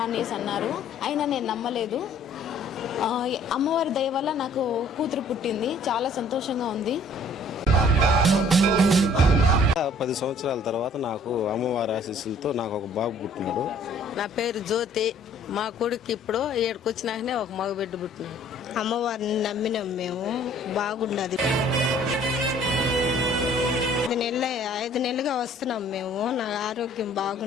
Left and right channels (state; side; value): normal; both; correlation 0.56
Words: అనేసి అన్నారు. అయినా నేను నమ్మలేదు. అమ్మవారి దయ వల్ల నాకు కూతురు పుట్టింది, చాలా సంతోషంగా ఉంది. 10 సంవత్సరాల తర్వాత నాకు అమ్మవారి ఆశీస్సులతో నాకు ఒక బాబు పుట్టినాడు. నా పేరు జ్యోతి. మా కొడుకు ఇప్పుడు 7కి వచ్చినాకనే ఒక మగ బిడ్డ పుట్టినాడు. అమ్మవారిని నమ్మినాం మేము, బాగుండదు. 5 నెలలుగా వస్తున్నాం మేము, నా ఆరోగ్యం